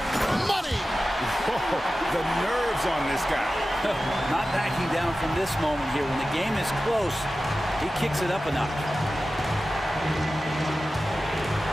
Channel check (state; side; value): normal; both; correlation 0.94